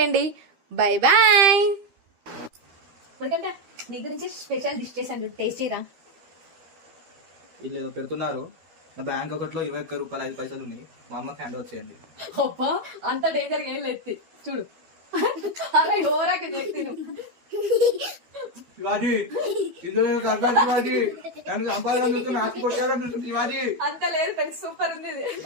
Bye bye. నీ గురించి స్పెషల్ డిష్ చేశాను, టేస్టీరా. వీళ్ళు ఏదో పెడుతున్నారు. నా బ్యాంక్ ఒకటిలో 21 రూపాయలు 5 పైసలు ఉన్నాయి. మా అమ్మకి హ్యాండ్ ఓవర్ చేయండి. అబ్బా అంత డేంజర్ ఏం లేదు, చూడు. అలా ఓరాకి చెప్తాను. శివాజీ శివాజీ నన్ను సంపాదన ఆస్తి శివాజీ అంత లేదు ఫ్రెండ్స్, సూపర్ ఉంది.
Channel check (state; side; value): late; left; 12 ms